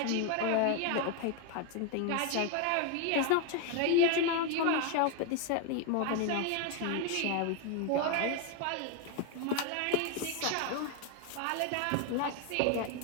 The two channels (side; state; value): both; different; correlation 0.01